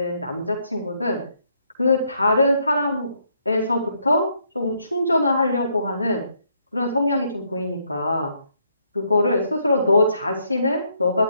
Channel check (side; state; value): both; inverted; correlation -0.73